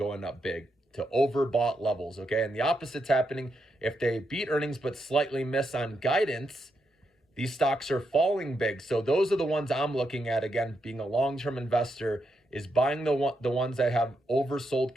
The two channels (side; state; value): both; normal; correlation 0.82